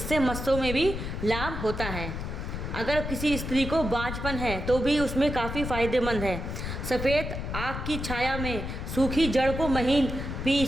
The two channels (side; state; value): left; noise; rumble, 5 dB below the sound